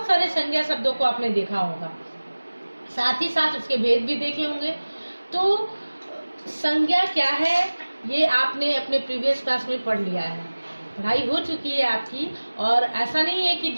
सारे संज्ञा शब्दों को आपने देखा होगा, साथ ही साथ उसके भेद भी देखे होंगे। तो संज्ञा क्या है ये आपने अपने प्रीवियस क्लास में पढ़ लिया है, पढ़ाई हो चुकी है आपकी। और ऐसा नहीं है कि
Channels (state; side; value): inverted; both; correlation -1.00